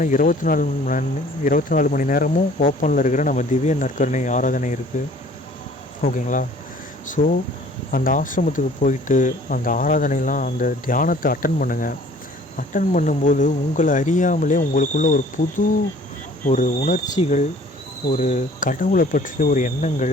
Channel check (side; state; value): both; normal; correlation 0.53